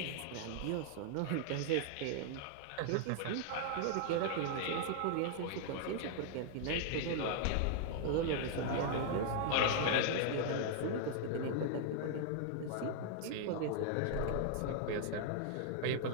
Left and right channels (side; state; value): both; different; correlation -0.01